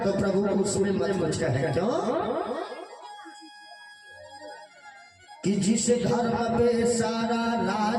तो प्रभु को उसमें मत कुछ कहे, क्यों कि जिस धर्म पे सारा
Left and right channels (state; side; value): identical; both; correlation 1.00